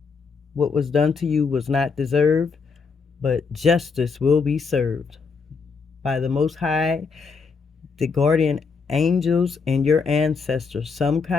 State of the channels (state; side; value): quieter; right; 5.1 dB